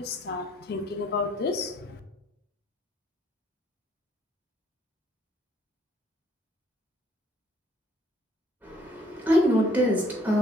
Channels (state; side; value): normal; both; correlation 0.63